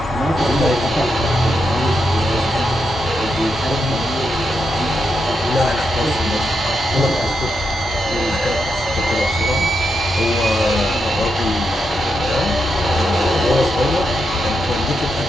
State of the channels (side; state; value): both; normal; correlation 0.83